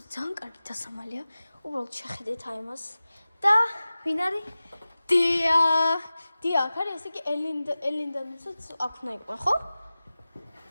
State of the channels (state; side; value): inverted; both; correlation -0.97